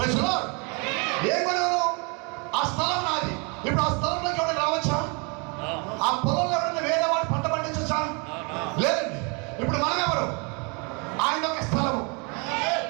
the Lord. ఏం కొనవు? ఆ స్థలం నాది. ఇప్పుడు ఆ స్థలంలోకి ఎవరైనా రావచ్చా? ఆ పొలంలో ఎవరైనా వేరే వాడు పంట పండించచ్చా? లేదండి. ఇప్పుడు మనం ఎవరు? ఆయన ఒక స్థలము.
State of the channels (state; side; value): quieter; left; 32.4 dB